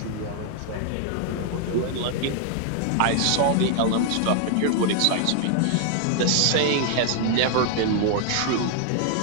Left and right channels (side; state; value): both; different; correlation 0.00